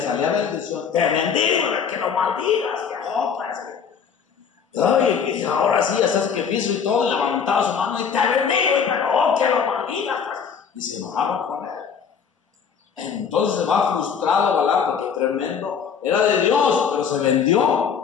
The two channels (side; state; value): right; quieter; 6.8 dB